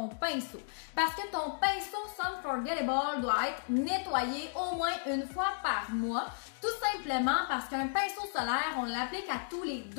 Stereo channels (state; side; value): silent; right; digital silence